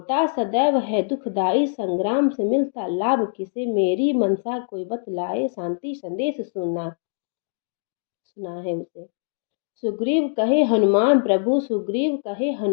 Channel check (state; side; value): silent; right; digital silence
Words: सदैव है दुखदाई संग्राम से मिलता लाभ किसे, मेरी मनसा कोई बतलाए शांति संदेश सुना है उसे। सुग्रीव कहे हनुमान प्रभु, सुग्रीव कहे